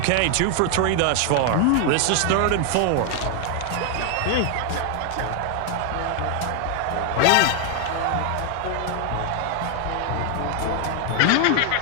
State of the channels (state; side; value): different; both; correlation 0.01